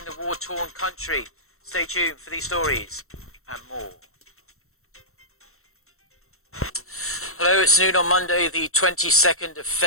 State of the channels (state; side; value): late; right; 0.63 ms